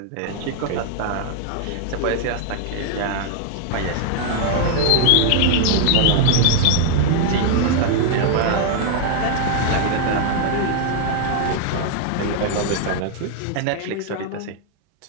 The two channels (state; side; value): different; both; correlation 0.00